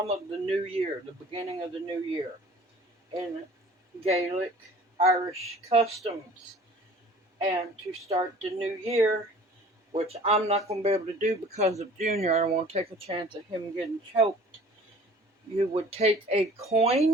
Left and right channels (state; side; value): normal; both; correlation 0.48